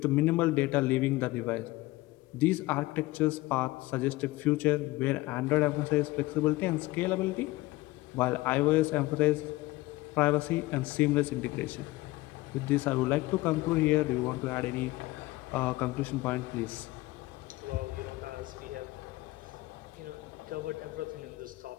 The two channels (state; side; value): quieter; right; 19.5 dB